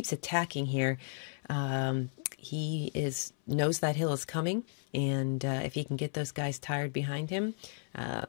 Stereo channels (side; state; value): right; silent; 55 dB below the other